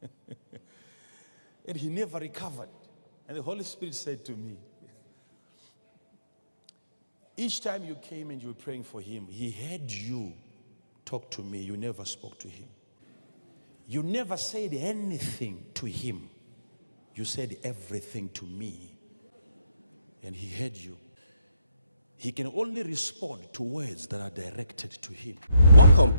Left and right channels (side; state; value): both; inverted; correlation -0.76